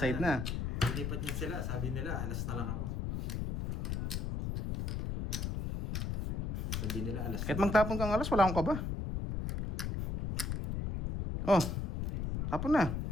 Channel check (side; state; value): left; noise; rumble, 1 dB below the sound